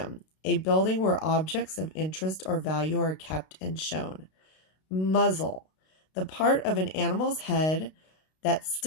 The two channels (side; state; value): right; late; 32 ms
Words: a building where objects of interest or value are kept and shown. Muzzle, the part of an animal's head that